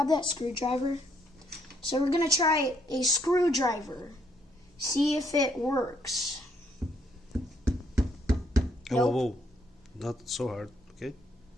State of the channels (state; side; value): normal; both; correlation 0.71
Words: that screwdriver? So we're going to try a screwdriver. See if it works. Nope. Whoa. Not so hard, okay?